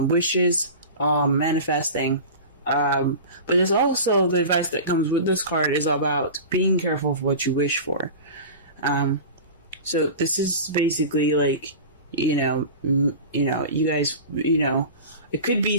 wishes, manifesting. But there's also the advice that comes with this card is about being careful of what you wish for. So this is basically like, you guys, it could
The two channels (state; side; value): inverted; both; correlation -0.33